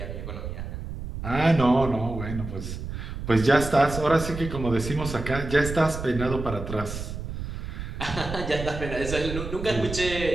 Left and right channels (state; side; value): noise; right; rumble, 7 dB below the sound